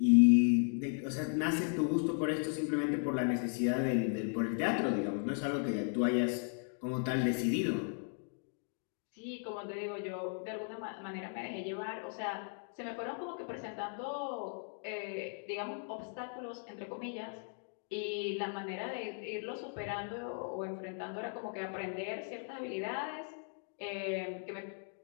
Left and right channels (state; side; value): silent; right; 53 dB below the other